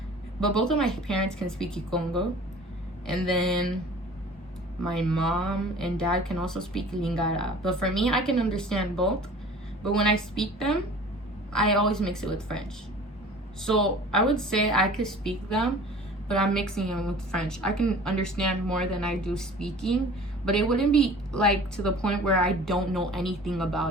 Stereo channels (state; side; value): normal; both; correlation 0.44